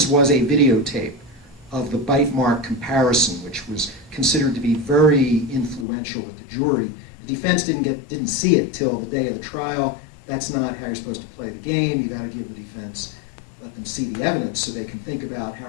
was a videotape of the bite mark comparison, which was considered to be very influential with the jury. The defense didn't see it till the day of the trial. That's not how you're supposed to play the game. You got to give the defense, let them see the evidence so they can think about how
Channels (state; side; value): drops out; right; at 5.9 s